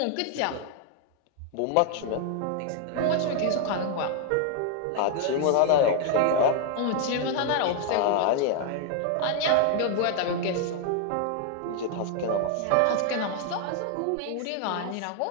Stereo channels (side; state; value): both; different; correlation 0.00